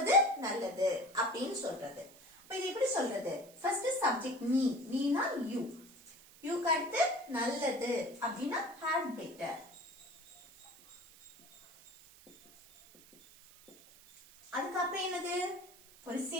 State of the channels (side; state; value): right; noise; hiss, 23 dB below the sound